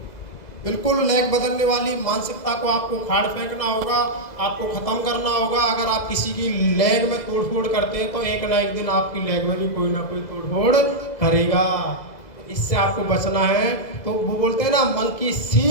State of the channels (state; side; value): late; right; 2.0 ms